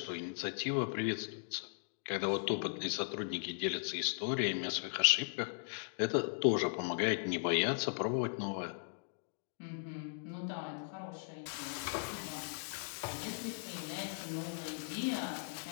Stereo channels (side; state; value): right; silent; digital silence